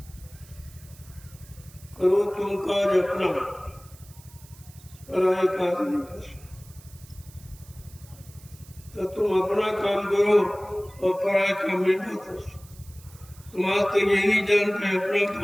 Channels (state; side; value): noise; right; hiss, 23 dB below the sound